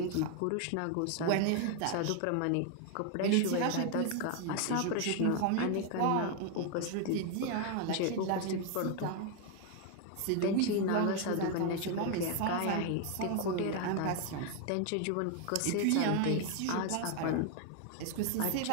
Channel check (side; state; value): both; different; correlation 0.01